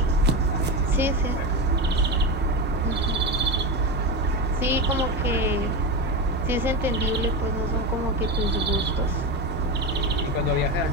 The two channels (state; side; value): normal; both; correlation 0.18